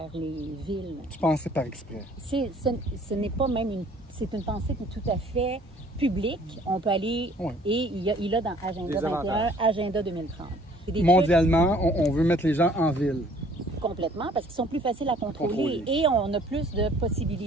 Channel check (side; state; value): both; normal; correlation 0.56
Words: les villes. Tu pensais par exprès? Ce n'est pas même c'est une pensée qui est tout à fait publique. On peut aller, et il a dans Agenda 21, Agenda 2030. Mondialement, on veut mettre les gens en ville. Complètement, parce qu'ils sont plus faciles à contrôler. Et on a plus de